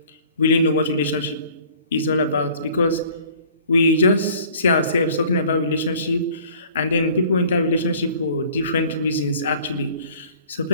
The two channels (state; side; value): inverted; both; correlation -0.51